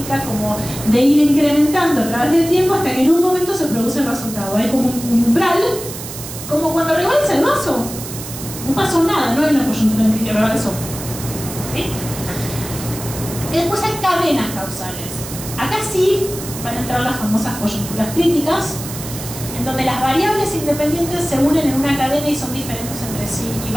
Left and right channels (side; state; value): right; noise; hiss, 10 dB below the sound